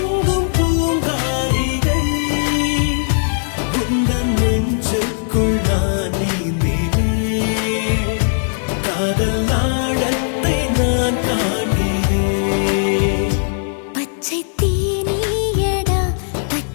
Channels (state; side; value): silent; right; 65 dB below the other